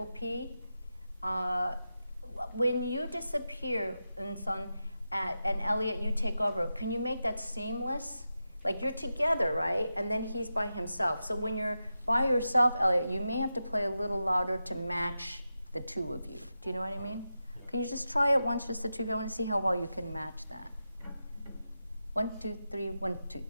P? When you disappear, and Elliott, you take over, can you make that seamless? Like you're together, right? And then he's by himself. So when you're by yourself, Elliott, you may have to play a little louder to match the two of you. Do you know what I mean? Can you just try it once, just the two of you? I want to see how well you can match that. 1, 2, 3, 1, 2,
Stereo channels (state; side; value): inverted; both; correlation -0.91